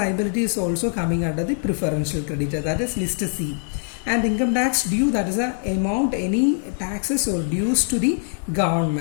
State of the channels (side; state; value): right; silent; digital silence